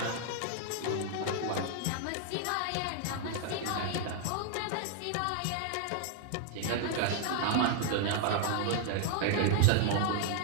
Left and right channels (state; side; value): different; both; correlation 0.00